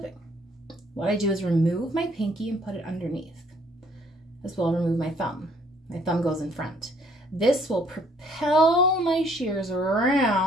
What I do is remove my pinky and put it underneath. As well, remove my thumb. My thumb goes in front. This will propel my shears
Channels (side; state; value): both; normal; correlation 0.62